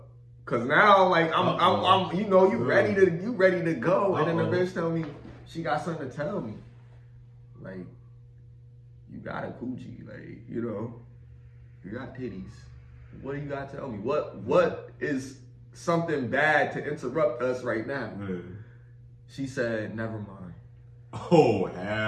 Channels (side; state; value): both; identical; correlation 1.00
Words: Cause now like I'm you know, you ready to go. And then the bitch tell me she got something to tell me. Like, you got a coochie, like, you know, you got titties. What do you got to tell me? What is something bad to interrupt us right now? She said, never mind. Oh,